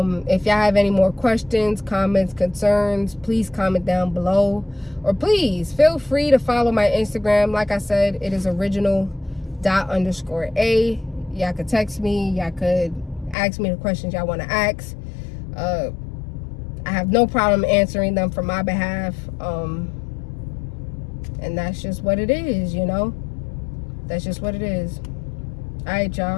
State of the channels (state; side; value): drops out; right; at 13.4 s